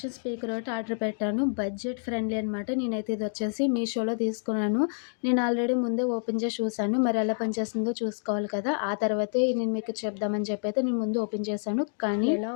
స్పీకర్ ఒకటి ఆర్డర్ పెట్టాను. బడ్జెట్ ఫ్రెండ్లీ అనమాట. నేనైతే ఇది వచ్చేసి మీషోలో తీసుకున్నాను. నేను ఆల్రెడీ ముందే ఓపెన్ చేసి చూసాను. మరి ఎలా పనిచేస్తుందో చూసుకోవాలి కదా! ఆ తర్వాతే నేను మీకు చెప్దామని చెప్పి అయితే నేను ముందు ఓపెన్ చేశాను. కానీ ఎలా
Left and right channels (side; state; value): right; silent; digital silence